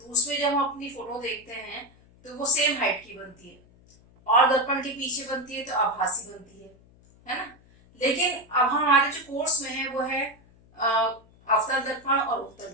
उसमें जब हम अपनी फोटो देखते हैं तो वो सेम हाइट की बनती है, और दर्पण के पीछे बनती है तो आभासी बनती है ना। लेकिन अब हमारे जो कोर्स में है वो है अवतल दर्पण और उत्तल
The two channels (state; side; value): noise; left; hum, 28 dB below the sound